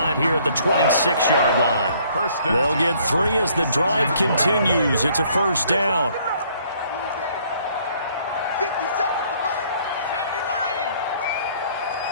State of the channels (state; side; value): inverted; both; correlation -0.62